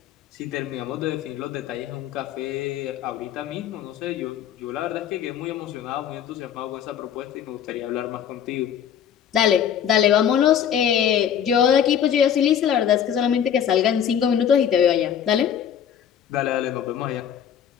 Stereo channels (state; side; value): quieter; right; 9.0 dB